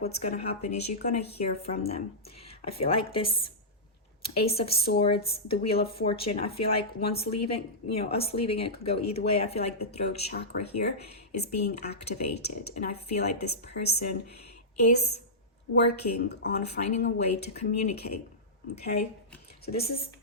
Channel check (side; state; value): both; normal; correlation -0.13